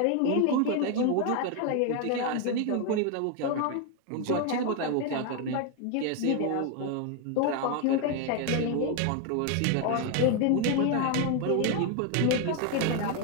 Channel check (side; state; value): both; different; correlation 0.01